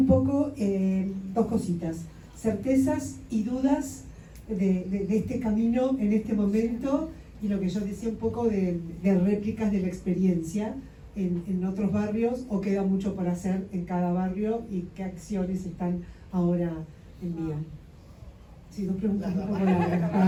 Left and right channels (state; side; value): identical; both; correlation 1.00